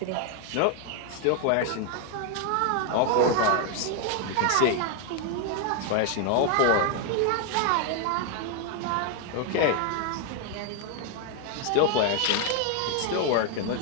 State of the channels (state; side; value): different; both; correlation 0.01